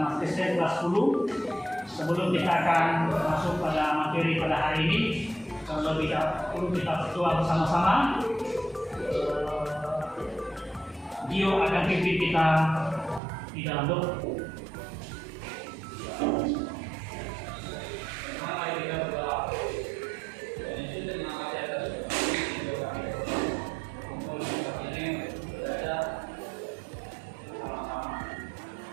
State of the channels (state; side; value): drops out; left; at 13.2 s